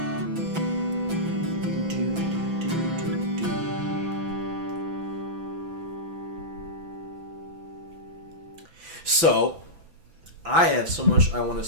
So, I have so much I want to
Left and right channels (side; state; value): left; late; 5.9 ms